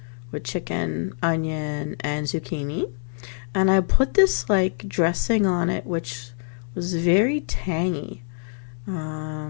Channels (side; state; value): right; silent; 62 dB below the other